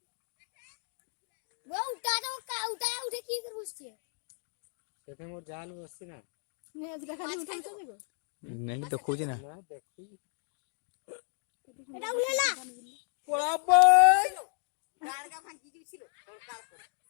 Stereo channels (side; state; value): right; silent; 56 dB below the other